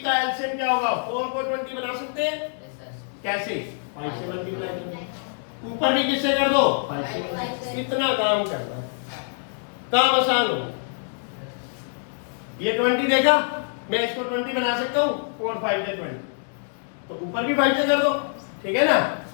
का एलसीएम क्या होगा? 4 को 20 बना सकते हैं कैसे? 5 से मल्टीप्लाई कर, ऊपर भी किससे कर दो? 5 से। इतना काम करना, काम आसान हो। ये 20 देखा, मैं इसको 20 बना सकता हूँ, 4 5 से 20, तो ऊपर भी 5 से कर दो, ठीक है ना।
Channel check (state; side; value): silent; right; 62 dB below the other